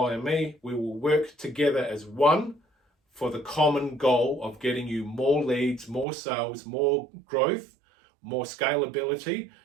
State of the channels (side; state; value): left; drops out; at 6.1 s